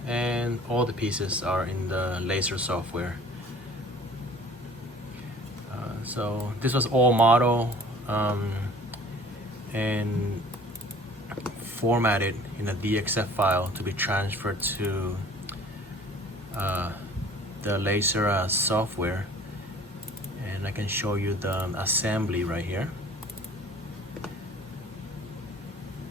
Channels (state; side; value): normal; both; correlation 0.49